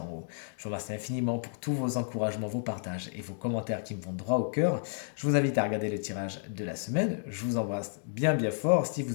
haut. Je vous remercie infiniment pour tous vos encouragements, vos partages et vos commentaires qui me vont droit au cœur. Je vous invite à regarder le tirage de la semaine. Je vous embrasse bien fort. Si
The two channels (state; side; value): silent; right; digital silence